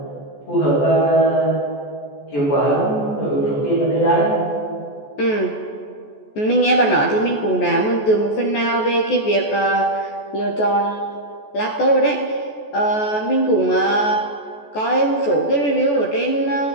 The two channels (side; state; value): right; late; 14 ms